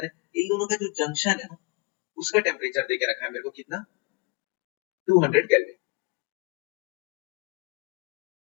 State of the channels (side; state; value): right; quieter; 27.8 dB